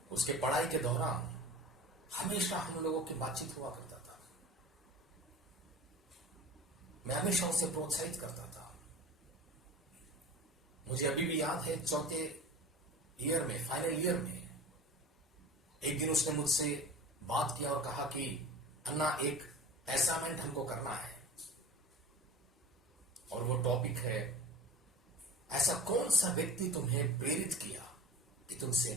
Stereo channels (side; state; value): both; normal; correlation 0.39